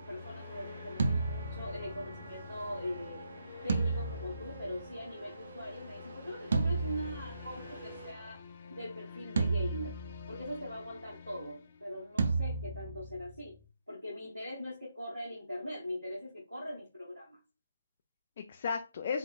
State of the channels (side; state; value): both; inverted; correlation -0.79